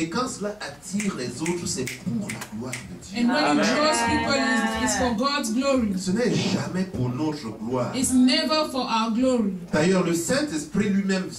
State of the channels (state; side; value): noise; left; hum, 30 dB below the sound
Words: quand cela attire les autres, c'est pour la gloire de Dieu. And when it draws people, it's for God's glory. Ce n'est jamais pour notre gloire. It's never for our glory. D'ailleurs, le Saint-Esprit lui-même